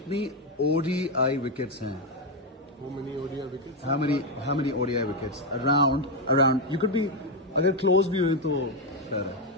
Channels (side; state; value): both; normal; correlation 0.05